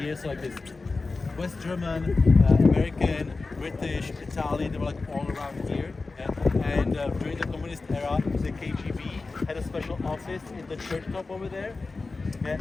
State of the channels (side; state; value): right; quieter; 3.8 dB